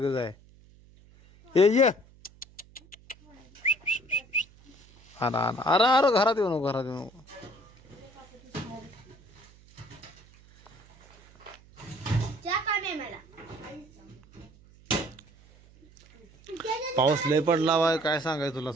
आहे. ये अरे अरे अरे घरात येऊ नको, घरात येऊ नको. पाऊस लय पडला वाय काय सांगाय तुला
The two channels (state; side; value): noise; right; hum, 26 dB below the sound